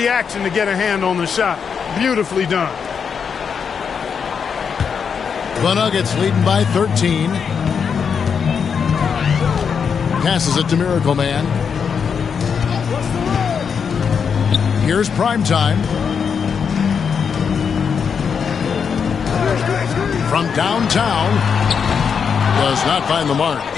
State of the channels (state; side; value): quieter; right; 6.6 dB